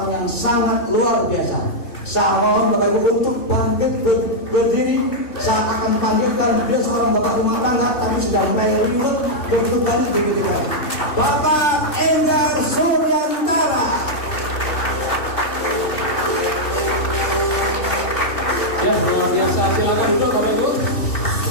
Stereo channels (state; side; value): late; right; 3.5 ms